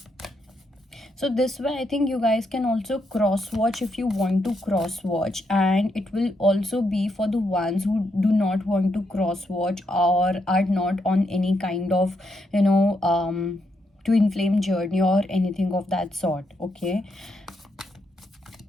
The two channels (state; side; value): normal; both; correlation 0.79